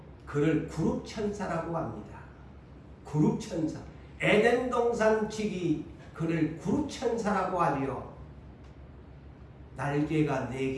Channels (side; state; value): both; identical; correlation 1.00